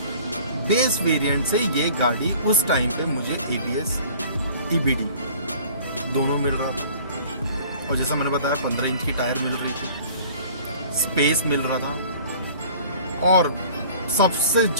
बेस वेरिएंट से ये गाड़ी उस टाइम पे मुझे ABS EBD दोनों मिल रहा था, और जैसा मैंने बताया 15 इंच की टायर मिल रही थी, स्पेस मिल रहा था, और सबसे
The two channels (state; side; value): inverted; both; correlation -0.49